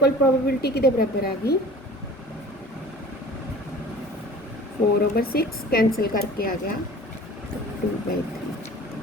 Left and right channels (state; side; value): normal; both; correlation 0.44